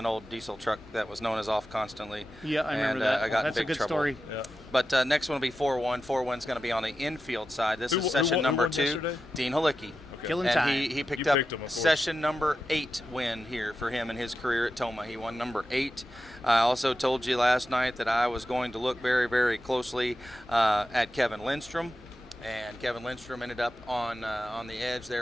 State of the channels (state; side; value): normal; both; correlation 0.91